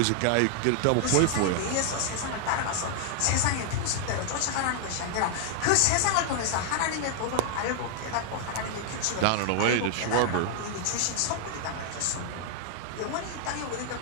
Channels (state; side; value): different; both; correlation 0.00